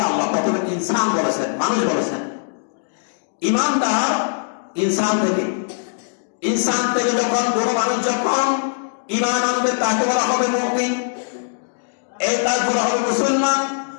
আল্লাহ প্রথমে ইনসান বলেছেন, মানুষ বলেছেন। ইমানদার ইনসান থেকে যখন কোনো মানুষ যখন ঈমান আনবে তাকে বলা হবে মুমিন, তার বলা হবে মুসলমান।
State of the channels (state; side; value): silent; right; digital silence